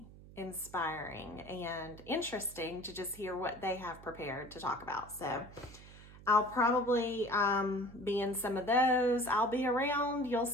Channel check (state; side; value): noise; right; hum, 19 dB below the sound